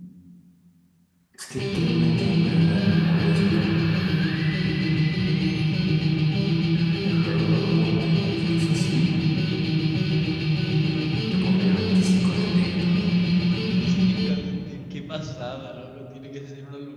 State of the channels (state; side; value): identical; both; correlation 1.00